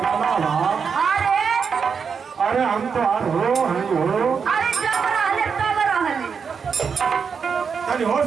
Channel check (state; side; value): quieter; left; 6.1 dB